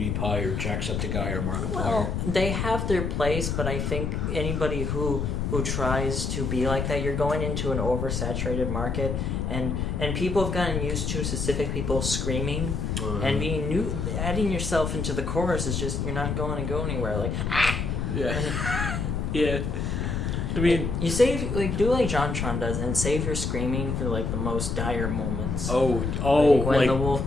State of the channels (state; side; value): noise; left; rumble, 1 dB below the sound